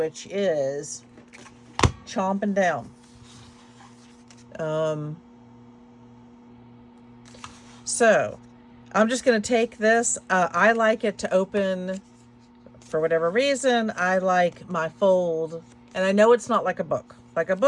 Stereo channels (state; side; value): identical; both; correlation 1.00